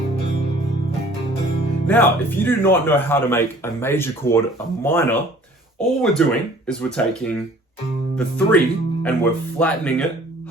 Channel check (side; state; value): both; normal; correlation 0.52